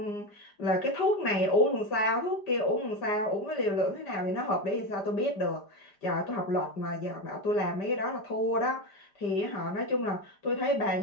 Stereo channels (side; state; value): right; late; 5.0 ms